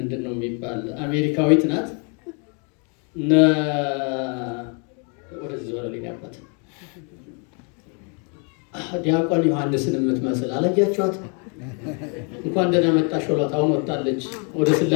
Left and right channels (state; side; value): quieter; right; 37.1 dB